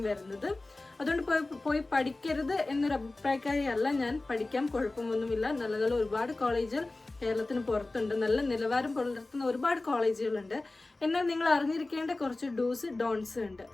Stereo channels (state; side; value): quieter; right; 3.0 dB